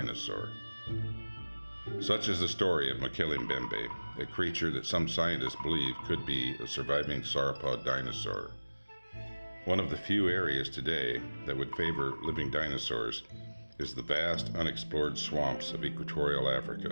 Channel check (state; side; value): inverted; both; correlation -1.00